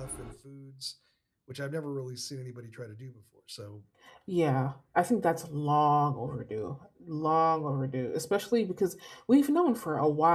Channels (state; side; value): identical; both; correlation 1.00